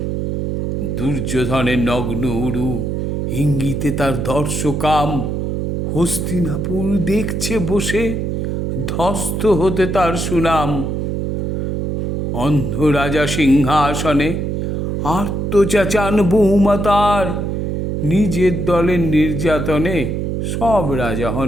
দুর্যোধনের নগ্ন উরু, ইঙ্গিতে তার দর্শকাম। হস্তিনাপুর দেখছে বসে, ধ্বস্ত হতে তার সুনাম। অন্ধ রাজা সিংহাসনে আর্তচাচান বৌমা তার। নিজের দলের নির্যাতনে সব রাজা হন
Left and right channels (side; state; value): right; noise; hum, 1 dB below the sound